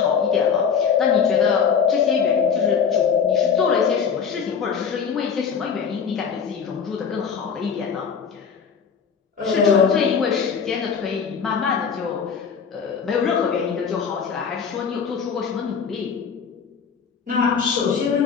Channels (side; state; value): right; quieter; 6.5 dB